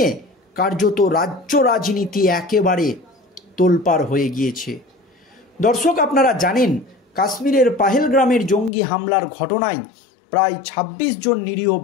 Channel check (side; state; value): right; drops out; at 8.7 s